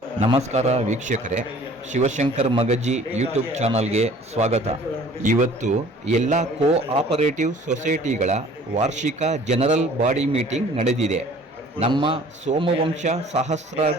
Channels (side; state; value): both; normal; correlation 0.51